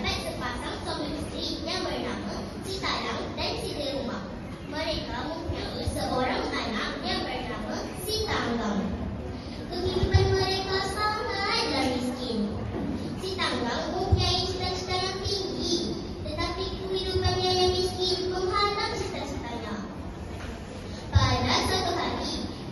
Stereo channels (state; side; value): identical; both; correlation 1.00